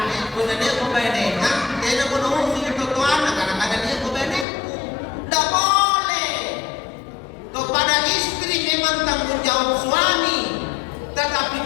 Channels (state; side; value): drops out; right; at 4.5 s